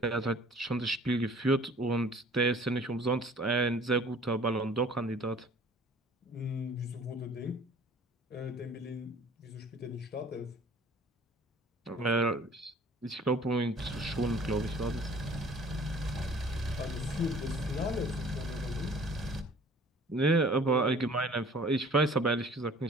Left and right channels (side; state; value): both; normal; correlation 0.51